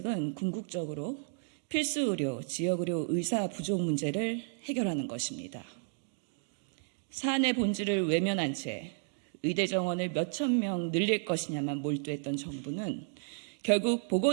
궁극적으로 필수 의료, 지역 의료 의사 부족 문제를 해결하는 것입니다. 사안의 본질을 외면한 채 의대 정원을 몇천 명 늘릴 것이냐만 몰두했던 정부는 결국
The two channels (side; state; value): left; silent; digital silence